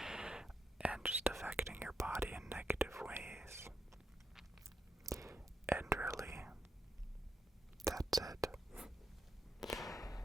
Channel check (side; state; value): both; normal; correlation 0.82